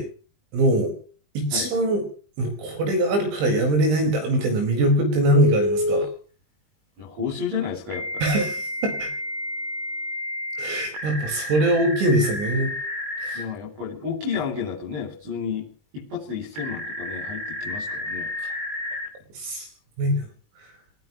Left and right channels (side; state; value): left; late; 20 ms